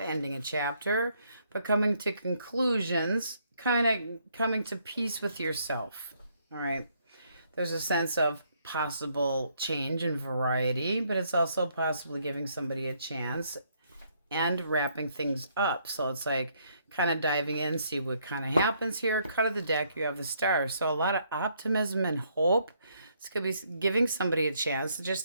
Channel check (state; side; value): inverted; both; correlation -0.70